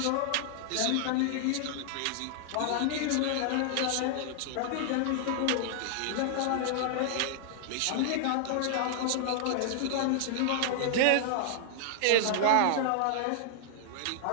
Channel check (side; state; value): both; different; correlation 0.00